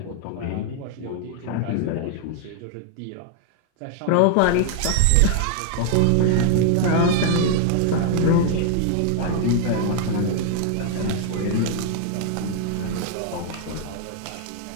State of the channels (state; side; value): different; both; correlation 0.00